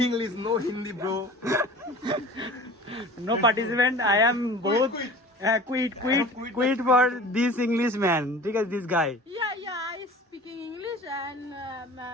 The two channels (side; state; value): both; normal; correlation 0.41